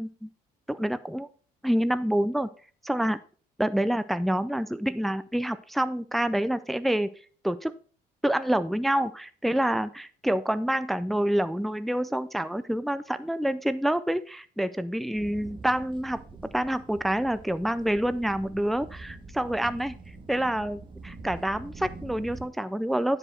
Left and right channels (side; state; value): both; normal; correlation 0.97